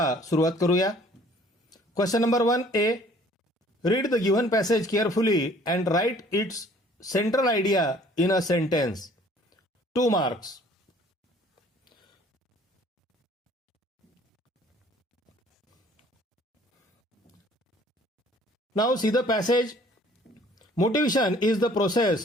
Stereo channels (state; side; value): normal; both; correlation 0.55